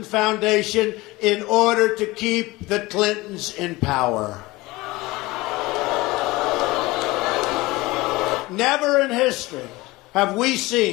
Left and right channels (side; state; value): right; quieter; 20.9 dB